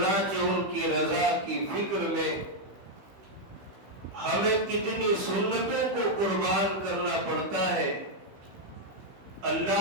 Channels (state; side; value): late; left; 16 ms